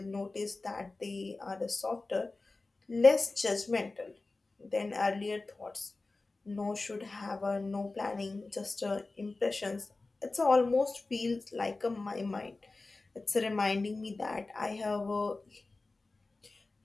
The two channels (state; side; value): quieter; right; 3.4 dB